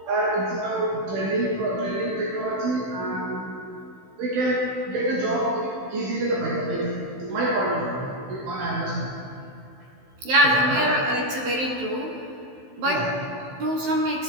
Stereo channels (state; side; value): late; left; 16 ms